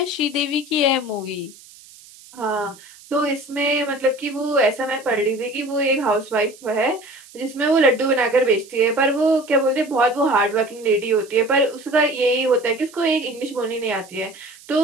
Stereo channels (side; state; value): right; noise; hiss, 22 dB below the sound